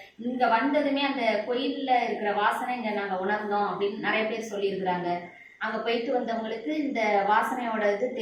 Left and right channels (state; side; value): identical; both; correlation 1.00